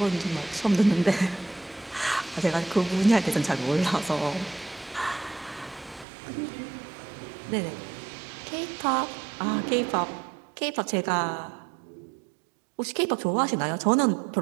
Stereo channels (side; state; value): left; drops out; at 6.1 s